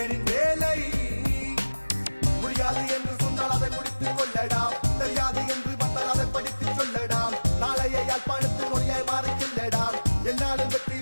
வேலை முடியாது என்று சொன்னால் அதை முடித்துக் கொள்ளடாம் தெரியாது என்று வந்தால் அதை படித்துச் சொல்லடாம் நாளைய யாழ்ப்பாணத்தில் மொழியாய் மாறிச் செல்லடாம் என்னாலும் வெற்றி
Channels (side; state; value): both; inverted; correlation -1.00